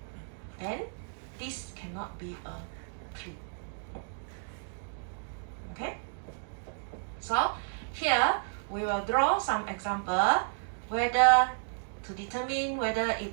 Then this cannot be a 3. Okay? So here we will draw some example whether to determine whether it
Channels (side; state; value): left; silent; digital silence